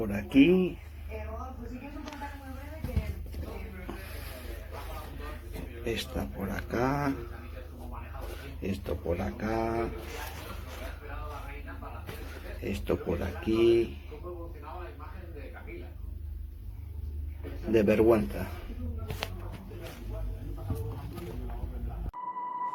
aquí. Esta por acá. Esto por acá. Esto por aquí. De vergüenza.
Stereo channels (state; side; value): identical; both; correlation 1.00